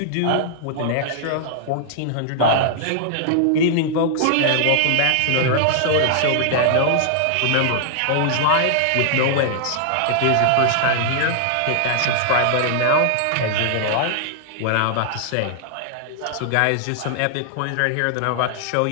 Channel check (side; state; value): both; different; correlation -0.01